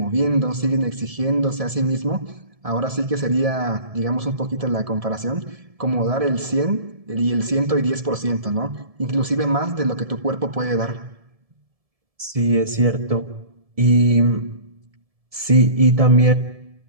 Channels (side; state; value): left; late; 1.7 ms